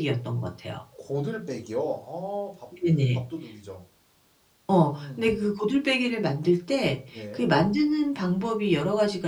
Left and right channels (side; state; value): both; identical; correlation 1.00